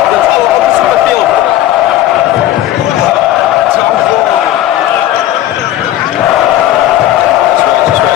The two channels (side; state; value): right; quieter; 13.4 dB